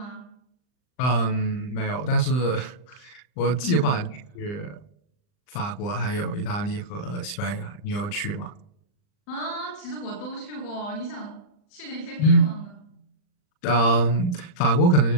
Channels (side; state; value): right; late; 39 ms